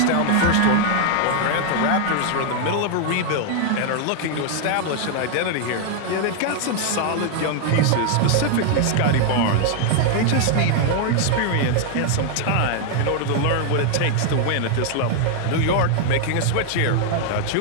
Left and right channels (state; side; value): different; both; correlation 0.00